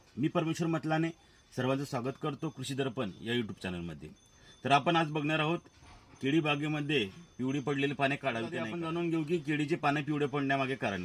मी परमेश्वर मतलाने सर्वांचं स्वागत करतो कृषी दर्पण या यूट्यूब चॅनलमध्ये. तर आपण आज बघणार आहोत केळी बागेमध्ये पिवळी पडलेली पाने काढावी का नाही. आपण जाणून घेऊ की केळीची पाने पिवळे पडण्यामागे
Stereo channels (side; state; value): both; identical; correlation 1.00